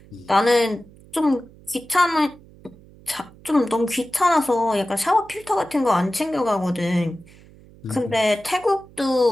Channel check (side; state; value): right; noise; hum, 24 dB below the sound